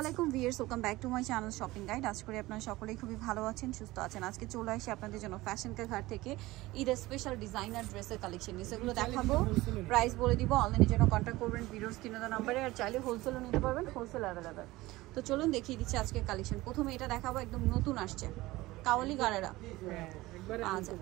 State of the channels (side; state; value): left; quieter; 19.0 dB